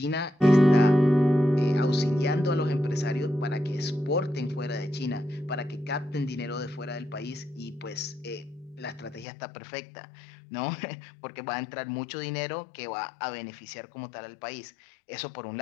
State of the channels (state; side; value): drops out; right; at 9.2 s